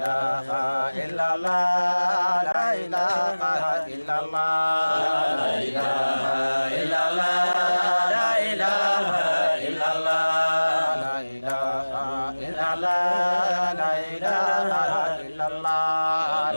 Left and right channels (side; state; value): both; inverted; correlation -1.00